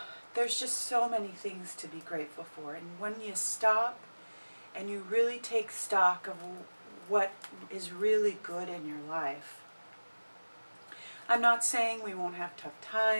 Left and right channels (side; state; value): both; inverted; correlation -1.00